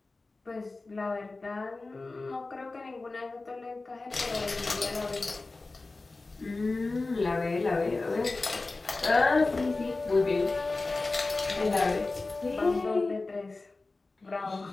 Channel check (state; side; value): quieter; right; 3.4 dB